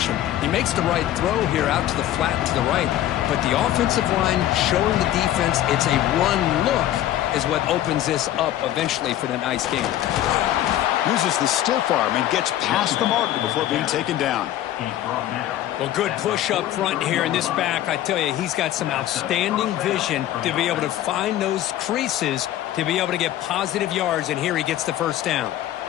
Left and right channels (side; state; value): right; quieter; 13.0 dB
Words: He makes the right throw here out to the flat to the right, but the offensive line showing the defense it's a run look is what opens this up eventually for the nice game. Uses the stiff arm and gets past the marker before being taken down. Well, good push up front here in this back. I tell you, he's got some outstanding vision to be able to find those creases to be able to get positive yards, and here he gets the first down.